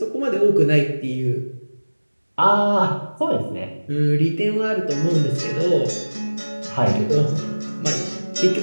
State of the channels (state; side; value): inverted; both; correlation -1.00